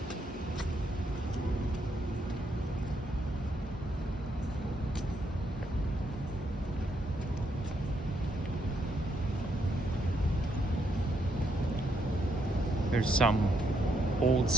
There's some old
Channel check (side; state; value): both; normal; correlation 0.77